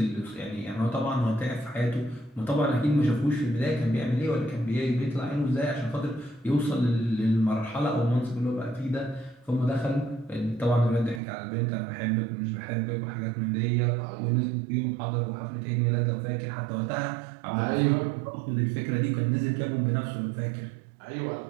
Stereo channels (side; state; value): left; drops out; at 11.2 s